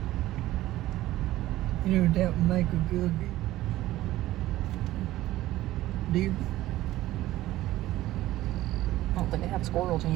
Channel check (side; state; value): left; quieter; 15.6 dB